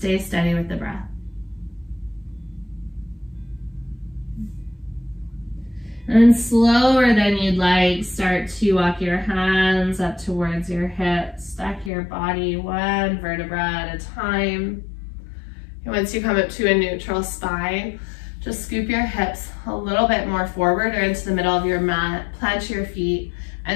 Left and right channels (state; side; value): drops out; right; at 11.9 s